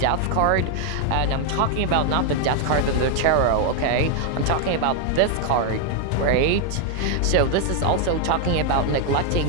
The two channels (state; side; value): different; both; correlation 0.01